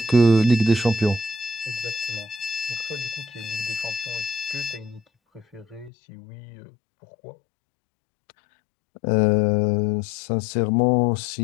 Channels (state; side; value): drops out; right; at 5.9 s